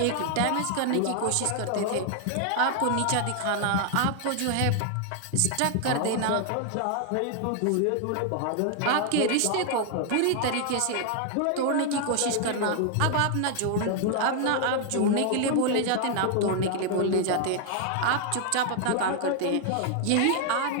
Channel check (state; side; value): different; both; correlation 0.00